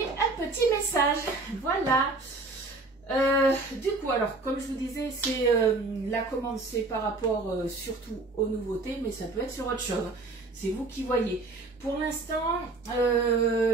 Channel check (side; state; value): left; quieter; 3.4 dB